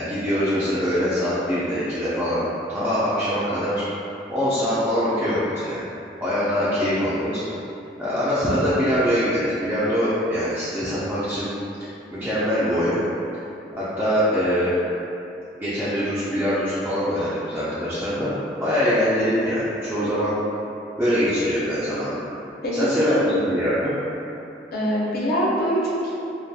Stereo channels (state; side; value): normal; both; correlation 0.49